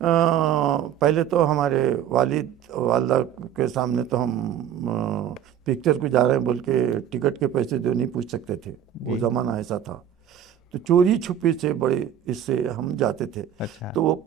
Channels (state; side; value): quieter; left; 9.9 dB